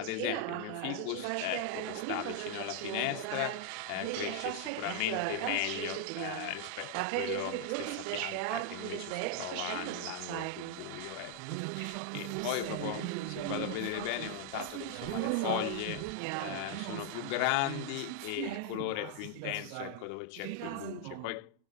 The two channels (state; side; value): different; both; correlation 0.00